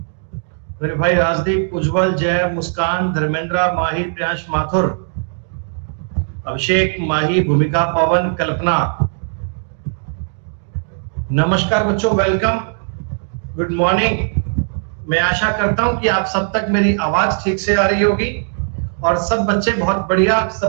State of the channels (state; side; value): silent; left; digital silence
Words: मेरे भाई राजदीप, उज्जवल, जय, मुस्कान, धर्मेंद्र, माही, प्रियांश, माथुर, अभिषेक, माही, भूमिका, पवन, कल्पना। नमस्कार बच्चों, वेलकम, गुड मॉर्निंग। मैं आशा करता हूं कि आप सब तक मेरी आवाज ठीक से आ रही होगी और सब बच्चे बहुत बढ़िया,